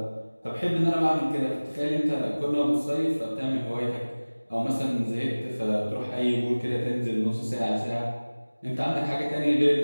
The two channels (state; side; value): inverted; both; correlation -1.00